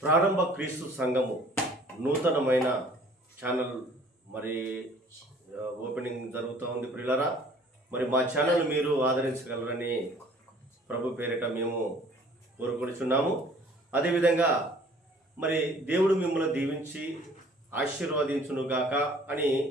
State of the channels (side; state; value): both; normal; correlation 0.53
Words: ప్రారంభ క్రీస్తు సంఘము నూతనమైన ఛానల్ మరి ఓపెనింగ్ జరుగుతూ ఉంది. ప్రియులరా, మరి మా ఛానల్ మీరు ఆదరించగలరని ప్రభు పేరిట మేము కోరుకొనిచున్నాము. అదేవిధంగా మరి దేవుడు మిమ్మల్ని దీవించి ఆశీర్వదించునుగాక అని